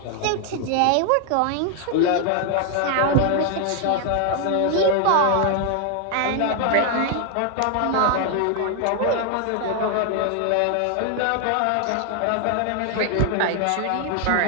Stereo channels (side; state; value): both; different; correlation 0.00